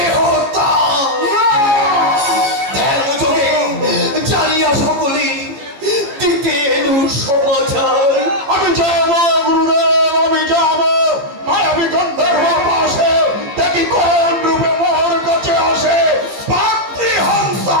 যোগে জানিয়া সকলে দিতে এলু সমাচার। আমি যাব গুরুদেব, আমি যাব মায়াবী গন্ধর্ব পাশে, দেখি কোন রূপে মোর কাছে আসে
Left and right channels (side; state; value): left; late; 14 ms